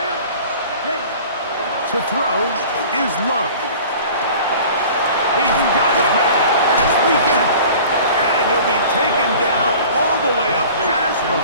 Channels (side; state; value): both; inverted; correlation -0.44